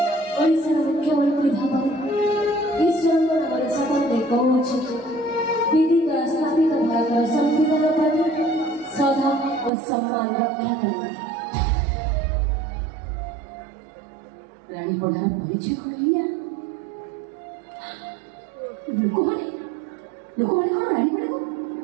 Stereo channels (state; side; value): drops out; left; at 9.7 s